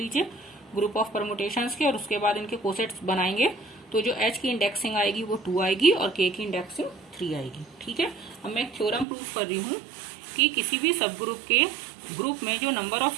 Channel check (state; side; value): drops out; left; at 9.1 s